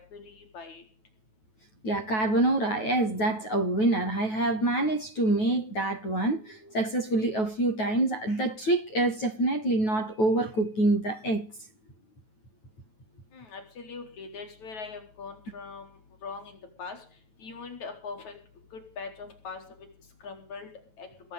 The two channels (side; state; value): right; late; 9.2 ms